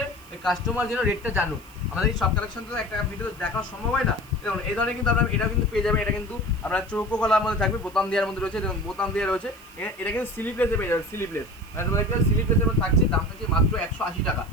কাস্টমার যেন রেটটা জানুক। আমাদের এই সব কালেকশন তো একটা ভিডিও দেখানো সম্ভব হয় না। দেখুন এই ধরনের কিন্তু আপনার এটা কিন্তু পেয়ে যাবেন, এটা কিন্তু আপনার চৌকো গলার মধ্যে থাকবে, বোতাম দেওয়ার মধ্যে রয়েছে, দেখুন বোতাম দেওয়া রয়েছে। এটা কিন্তু স্লিভলেসে পেয়ে যাবে, স্লিভলেস মানে তোমাদের স্লিভলেসের মধ্যে থাকছে, দাম থাকছে মাত্র 180 টাকা।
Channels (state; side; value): noise; right; hiss, 24 dB below the sound